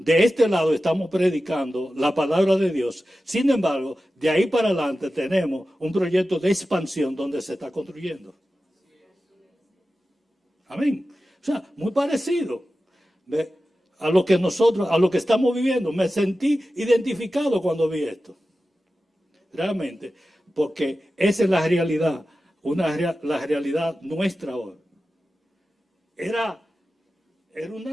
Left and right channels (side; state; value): both; normal; correlation 0.94